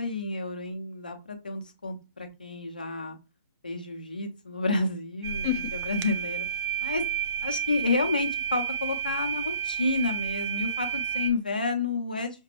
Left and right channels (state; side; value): inverted; both; correlation -0.57